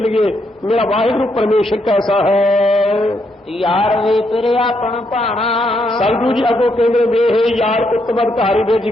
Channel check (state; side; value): normal; both; correlation 0.77